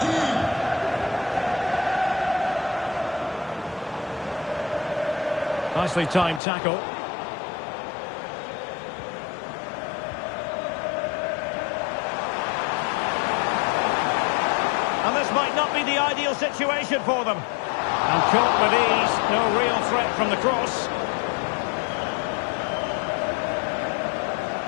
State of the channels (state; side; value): drops out; right; at 6.4 s